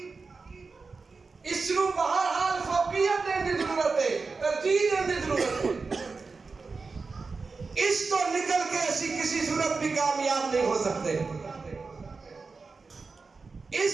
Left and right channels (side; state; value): left; quieter; 4.3 dB